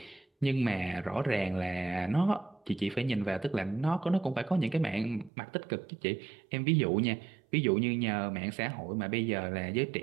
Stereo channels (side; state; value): left; drops out; at 5.3 s